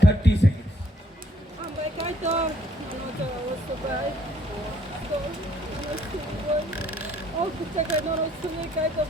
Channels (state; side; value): normal; both; correlation 0.65